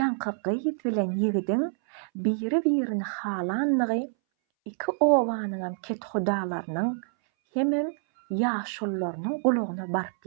gyz bilen ýigidiň biri-birini halandygy iki owanyň ketxudalarynyň hemem ýaşullarynyň gulagyna baryp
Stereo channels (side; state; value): left; silent; 60 dB below the other